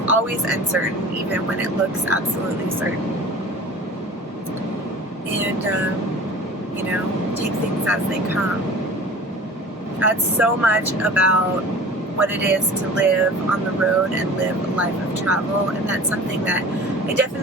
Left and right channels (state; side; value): normal; both; correlation 0.40